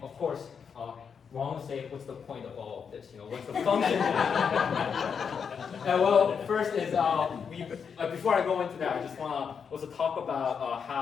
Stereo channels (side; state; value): right; quieter; 6.6 dB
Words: of course, Wong will say, what's the point of all of this? What's the function? Well, first is, before I go into that, I just want to also talk about